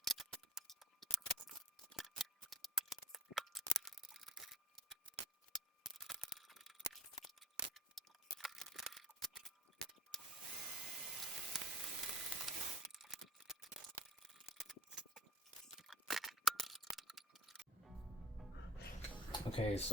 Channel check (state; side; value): normal; both; correlation 0.42